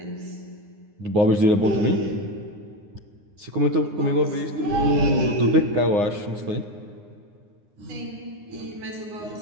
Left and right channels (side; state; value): left; late; 9.7 ms